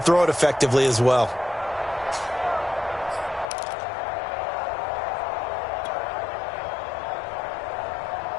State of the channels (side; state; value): right; drops out; at 3.5 s